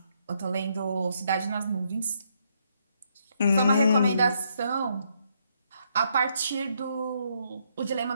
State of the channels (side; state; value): both; inverted; correlation -0.74